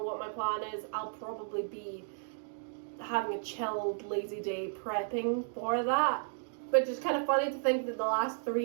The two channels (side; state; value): left; silent; digital silence